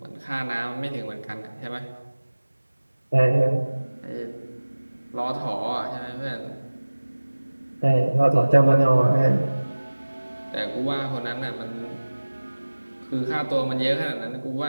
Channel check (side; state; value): both; inverted; correlation -1.00